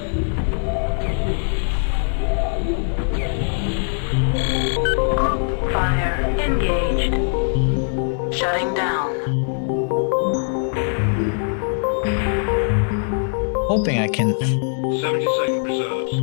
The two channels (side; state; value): right; silent; digital silence